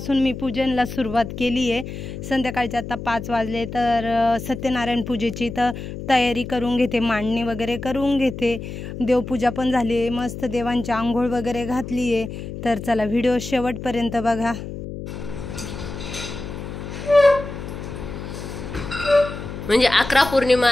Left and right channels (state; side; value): noise; left; hum, 9 dB below the sound